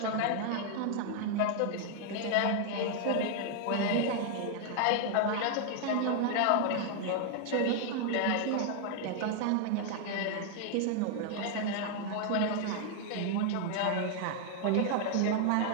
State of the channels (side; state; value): both; different; correlation 0.00